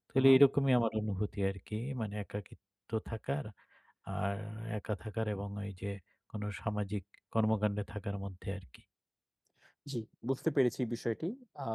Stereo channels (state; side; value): identical; both; correlation 1.00